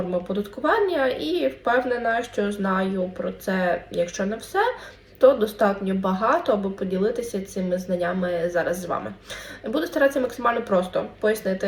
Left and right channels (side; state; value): both; identical; correlation 1.00